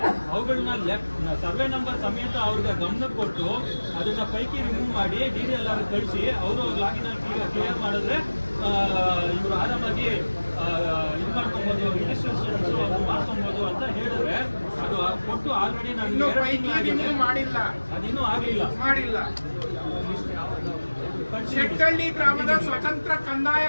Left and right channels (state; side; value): inverted; both; correlation -1.00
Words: ಅವುಗಳನ್ನ ಸರ್ವೆ ನಂಬರ್ ಸಮೇತ ಅವ್ರಿಗೆ ಗಮನ ಕೊಟ್ಟು ಅದನ್ನ ಪೈಕಿ ರಿಮೂವ್ ಮಾಡಿ DDLR ಕಳಿಸಿ ಅವರು ಲಾಗಿನ್ ಕ್ಲಿಯರ್ ಮಾಡಿದ್ರೆ ಇವರು ಆರಾಮಾಗಿ ಇದು ಮಾಡ್ಕೊಬಹುದು, ರಿಜಿಸ್ಟ್ರೇಷನ್ ಮಾಡ್ಕೊಬಹುದು ಅಂತ ಹೇಳಿದ್ರೆ ಅದು ಕೊಟ್ಟು ಆಲ್ರೆಡಿ ನಾನು ಮಾಡಿಲ್ಲ, ಅದಿನ್ನೂ ಮಾಡಿಲ್ಲ. ಶೆಟ್ಟಳ್ಳಿ ಗ್ರಾಮದ ಸ್ವತಂತ್ರ ಕಂದಾಯ